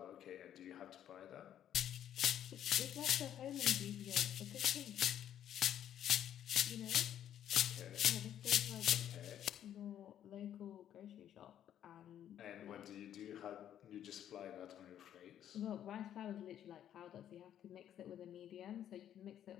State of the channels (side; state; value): right; quieter; 10.5 dB